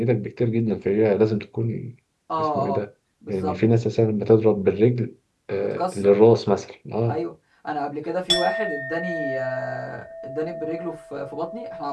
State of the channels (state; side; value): identical; both; correlation 1.00